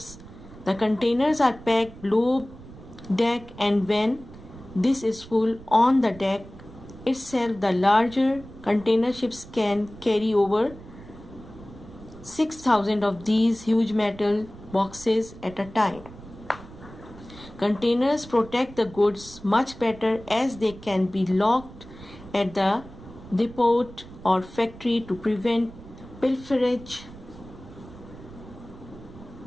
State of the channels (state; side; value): noise; right; rumble, 18 dB below the sound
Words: The containers are packed below deck, and when this is full on the deck itself, the larger container ships can carry over 6,000 of these huge metal boxes at a time. Containers protect the goods much better, as they can be locked at the depot or factory to prevent pilferage.